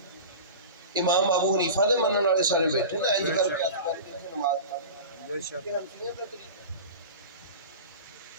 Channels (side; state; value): both; inverted; correlation -0.33